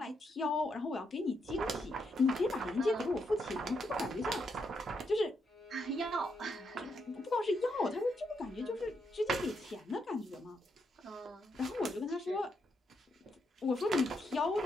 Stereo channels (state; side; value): normal; both; correlation 0.79